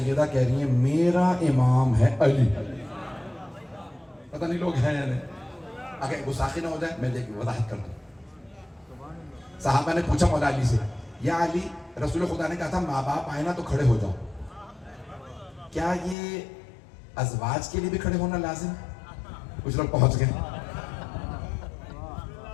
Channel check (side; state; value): right; drops out; at 16.2 s